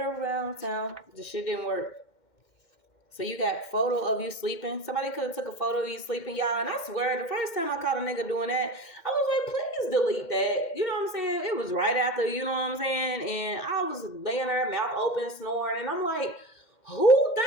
around town. The shit didn't work. So you got photo of you sleeping. Somebody could have took a photo of you sleeping, y'all. And I swear, the first time I caught a nigga doing that, I was like, please delete that. You know what I'm saying? It was right after, you know what I'm saying? And I was laying there, mouth open, snoring. And I'm like, who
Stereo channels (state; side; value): late; right; 2.1 ms